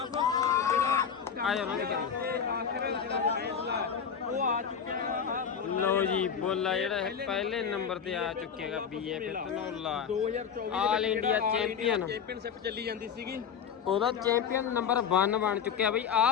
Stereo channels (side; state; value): right; quieter; 7.3 dB